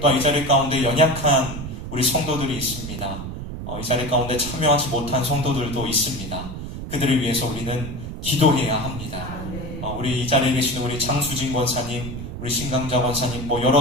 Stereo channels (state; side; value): noise; right; rumble, 8 dB below the sound